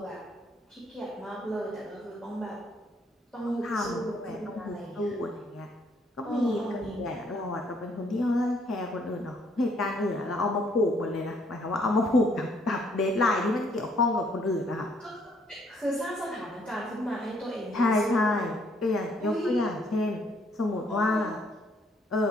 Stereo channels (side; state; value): both; normal; correlation 0.66